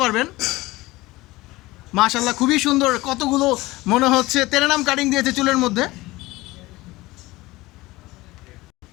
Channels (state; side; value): quieter; right; 19.7 dB